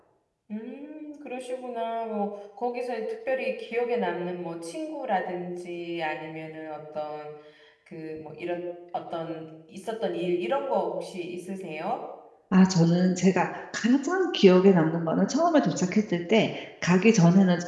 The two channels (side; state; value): both; identical; correlation 1.00